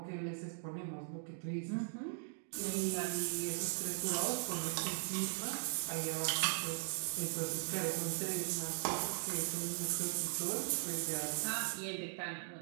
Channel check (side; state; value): left; silent; digital silence